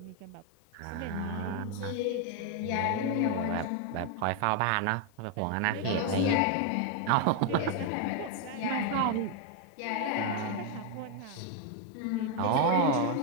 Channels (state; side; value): different; both; correlation 0.01